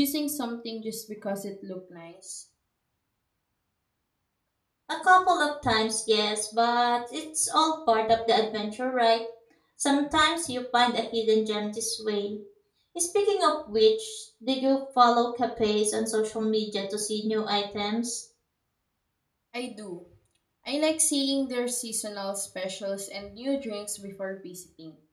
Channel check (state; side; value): identical; both; correlation 1.00